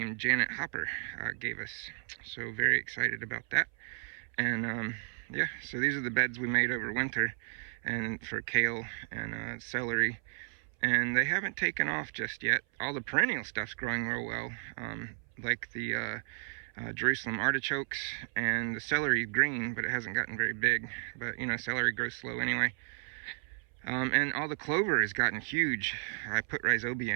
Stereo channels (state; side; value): silent; left; 56 dB below the other